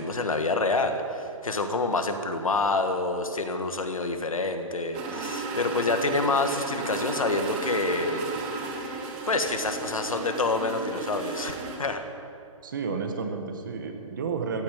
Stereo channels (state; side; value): normal; both; correlation -0.01